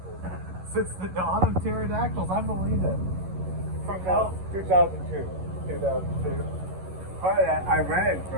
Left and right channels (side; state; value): left; late; 11 ms